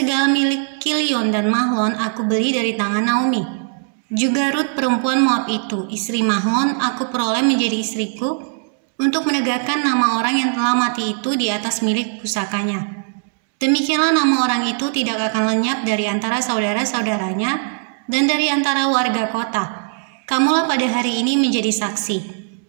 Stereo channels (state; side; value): silent; left; 60 dB below the other